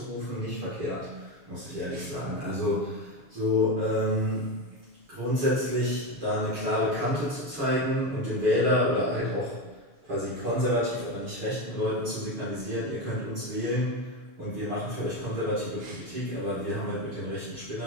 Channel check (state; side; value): late; left; 7.0 ms